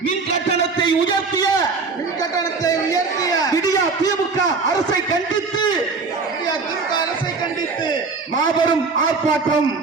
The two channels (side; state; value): left; quieter; 4.4 dB